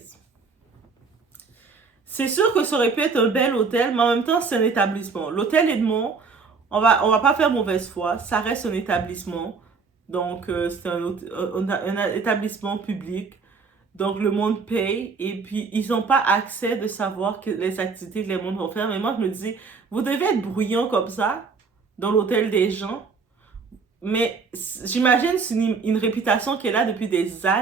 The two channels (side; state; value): left; quieter; 4.9 dB